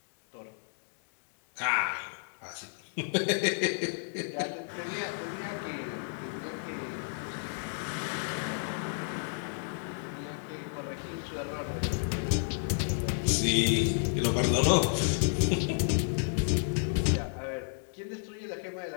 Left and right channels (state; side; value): silent; right; digital silence